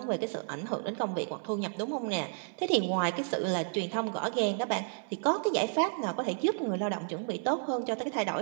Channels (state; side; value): silent; left; 57 dB below the other